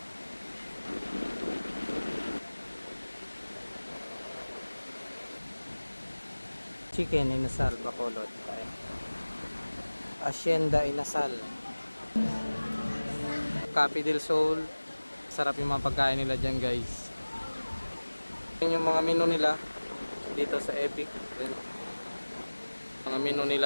Chicken inasal Bacolod. Hacienda inasal. Cafe del Sol. Sarap yung mga pagkain nila dyan, guys. Yun yung mga menu nila dito sa Epic. Mga menu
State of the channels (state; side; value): inverted; both; correlation -1.00